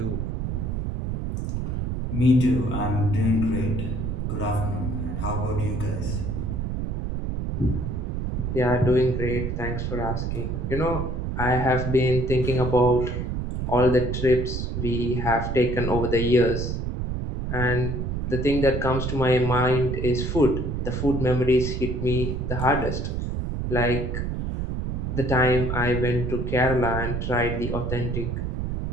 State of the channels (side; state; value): right; noise; rumble, 2 dB below the sound